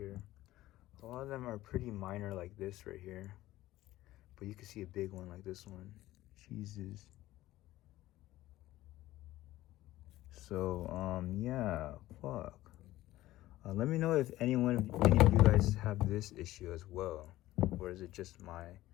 A lot of them are pretty minor like this right here, but you can see a big one like this one. Jesus. So yeah, fuck. Let me know if any of you guys have this issue as well, or is it just my?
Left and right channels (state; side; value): quieter; right; 15.9 dB